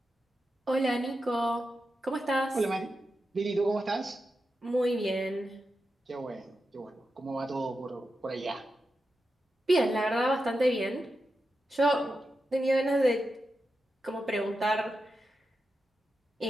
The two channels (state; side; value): normal; both; correlation 0.89